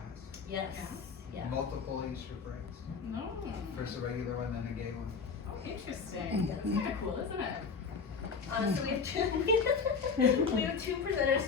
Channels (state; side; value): quieter; right; 5.4 dB